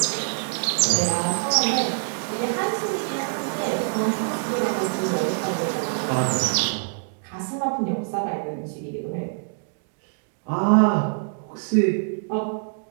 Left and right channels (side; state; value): left; silent; digital silence